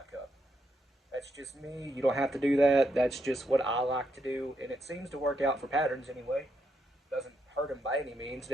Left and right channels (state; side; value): normal; both; correlation 0.79